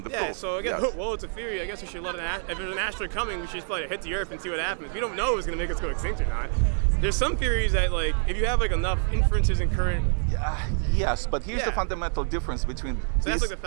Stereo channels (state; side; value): silent; left; 55 dB below the other